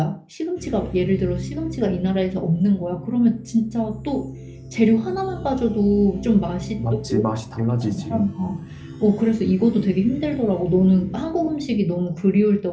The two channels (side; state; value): both; identical; correlation 1.00